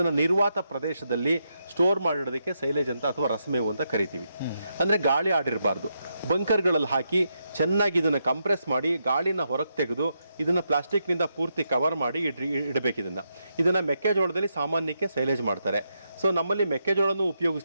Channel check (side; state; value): both; inverted; correlation -0.82